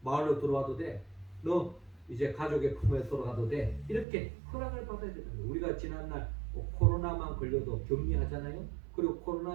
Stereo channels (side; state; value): left; drops out; at 4.0 s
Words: 마을로 들어와도 돼. 너 이제 가족의 품에 들어가도 돼. 이렇게 허락을 받아야 되는 거예요. 우리가 지난날 코로나만 걸려도 격리하잖아요. 그리고